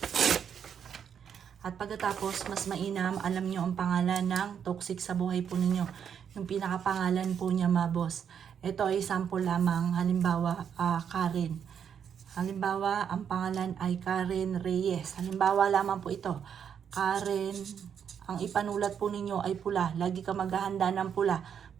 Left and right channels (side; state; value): left; quieter; 7.9 dB